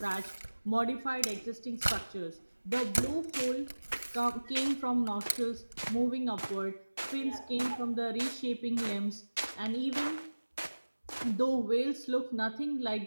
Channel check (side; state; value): both; inverted; correlation -1.00